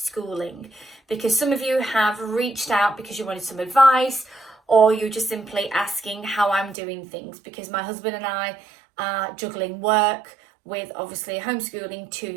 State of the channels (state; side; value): drops out; left; at 6.8 s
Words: because some of you have reached out because you wanted some advice, or you're just simply asking how I'm doing things, because my husband and I are juggling work with obviously homeschooling two